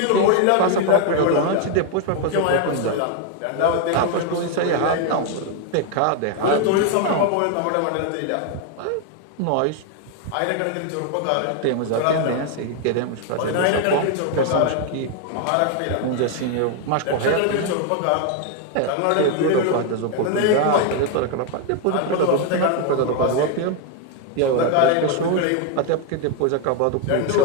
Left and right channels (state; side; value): different; both; correlation 0.01